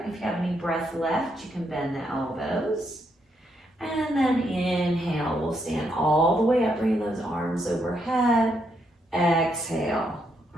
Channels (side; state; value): both; normal; correlation 0.77